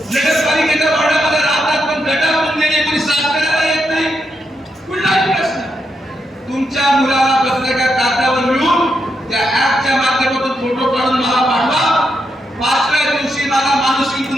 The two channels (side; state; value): both; normal; correlation 0.82